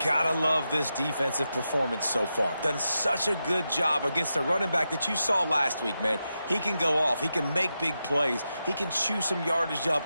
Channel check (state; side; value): inverted; both; correlation -0.88